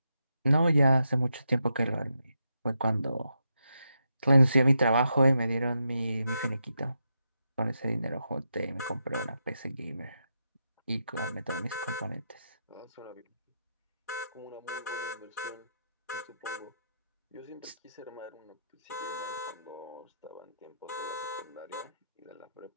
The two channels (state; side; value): inverted; both; correlation -0.84